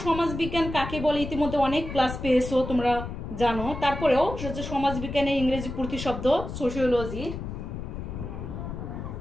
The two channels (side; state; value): left; noise; rumble, 7 dB below the sound